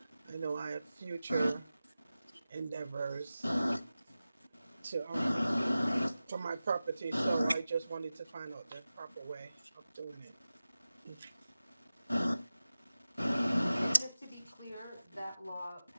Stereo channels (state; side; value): inverted; both; correlation -0.95